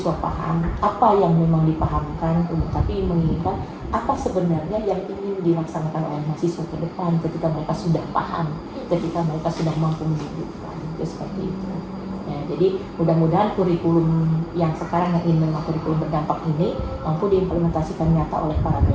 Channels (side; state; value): both; identical; correlation 1.00